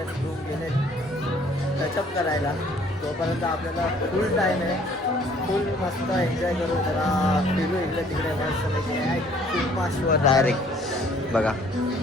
ग्रूम गेले टचअप करायला. तोपर्यंत आपल्याला फुल टाइम आहे. फुल मस्त एन्जॉय करू. जरा फिरू इकडे तिकडे मस्त माशवर डायरेक्ट. बघा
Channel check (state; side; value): normal; both; correlation 0.58